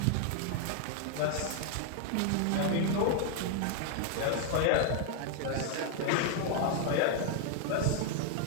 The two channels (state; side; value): different; both; correlation 0.00